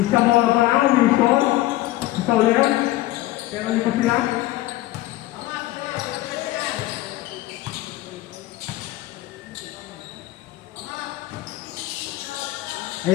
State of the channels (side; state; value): right; quieter; 16.6 dB